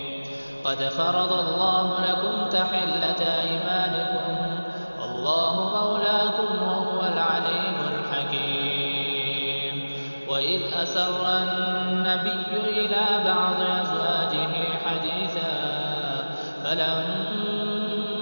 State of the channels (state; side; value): inverted; both; correlation -1.00